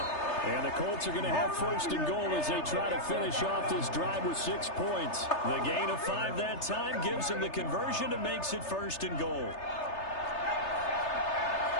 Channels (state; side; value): late; right; 3.3 ms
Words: And the Colts are going to have first and goal as they try to finish off this drive with 6 points. The gain of 5 that time gives them the conversion and makes it first and goal.